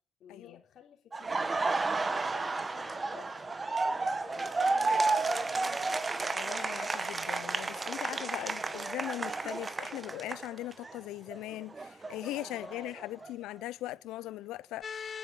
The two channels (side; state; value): both; normal; correlation 0.85